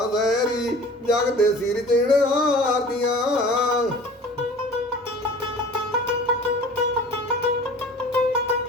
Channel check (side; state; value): both; normal; correlation 0.43